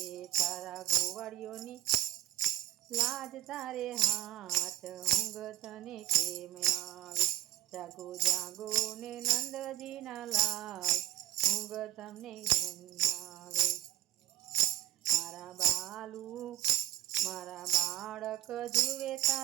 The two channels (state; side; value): quieter; left; 14.5 dB